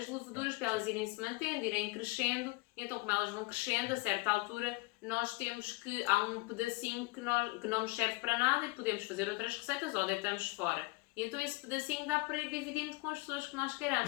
leveduras para elas irem se mantendo, irem crescendo. Então, como elas vão crescendo, a certa altura nós temos que há um pedacinho que não nos serve para nada e podemos fazer outras receitas ou deitamos fora. E então esse pedacinho dá para ir dividindo com as pessoas que nós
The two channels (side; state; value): right; quieter; 24.3 dB